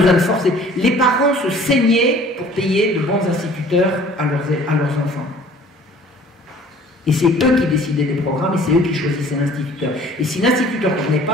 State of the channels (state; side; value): normal; both; correlation 0.51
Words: de forcer. Les parents se saignaient pour payer de bons instituteurs à leurs enfants. Et c'est eux qui décidaient des programmes et c'est eux qui choisissaient l'instituteur. Et si l'instituteur ne venait